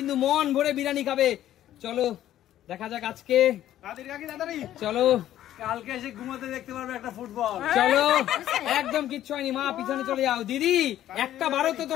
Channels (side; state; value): right; quieter; 12.5 dB